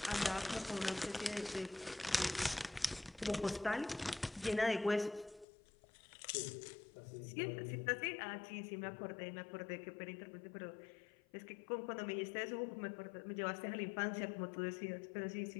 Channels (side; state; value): right; drops out; at 5.5 s